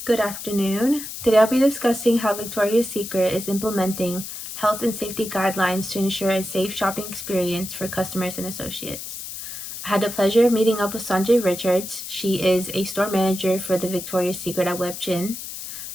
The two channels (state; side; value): noise; left; hiss, 9 dB below the sound